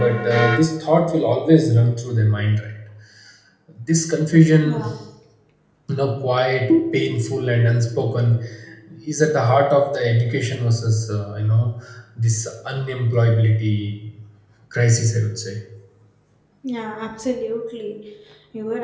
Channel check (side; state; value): both; identical; correlation 1.00